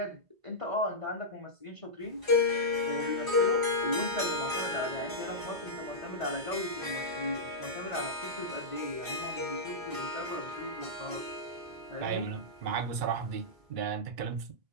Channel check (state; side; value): late; left; 2.3 ms